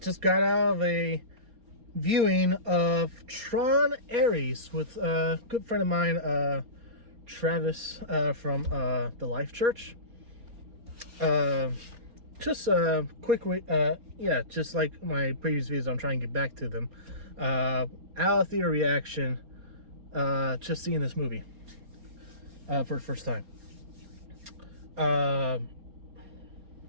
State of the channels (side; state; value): left; late; 4.3 ms